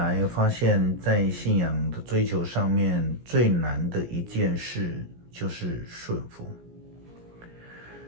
发现在信仰的追求上面最难的一件事就是顺服。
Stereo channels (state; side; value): late; left; 17 ms